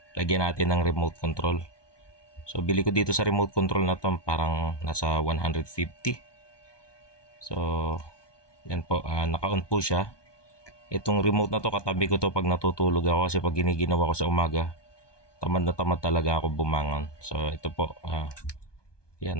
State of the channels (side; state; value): right; late; 1.2 ms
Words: Lagyan natin ng remote control. So, bili ko dito sa remote control na to, parang nasa 150. So, yan po, naka-on po siya. Itong remote na to, katabi ko to pag natutulog ako kasi pag giniginawa ko sa umaga, tamad na tamad talaga ako bumangon. So, ito po,